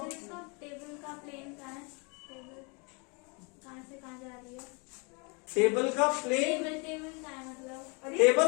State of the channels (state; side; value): quieter; right; 32.4 dB